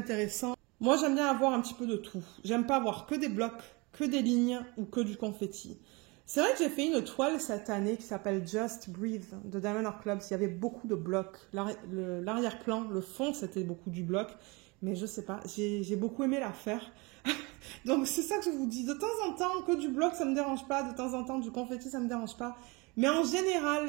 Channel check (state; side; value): quieter; left; 26.9 dB